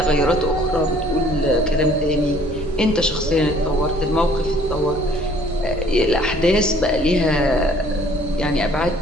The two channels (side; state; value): both; normal; correlation 0.57